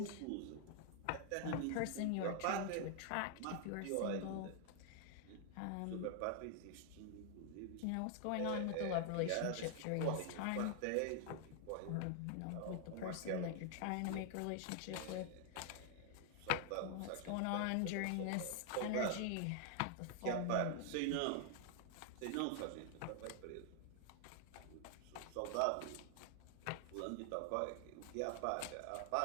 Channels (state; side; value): different; both; correlation 0.00